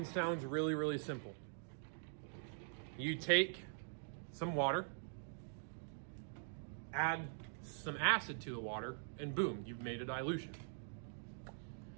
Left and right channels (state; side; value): silent; left; digital silence